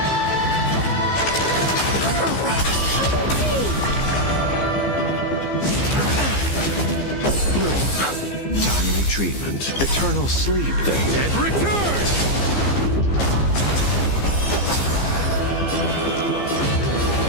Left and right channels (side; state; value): right; late; 15 ms